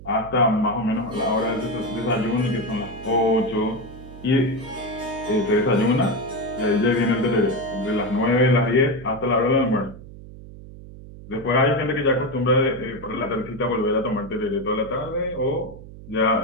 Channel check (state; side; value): noise; right; hum, 16 dB below the sound